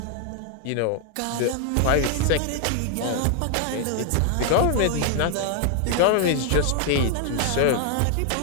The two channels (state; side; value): different; both; correlation 0.00